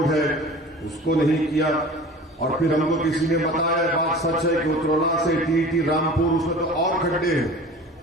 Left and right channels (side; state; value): both; normal; correlation 0.40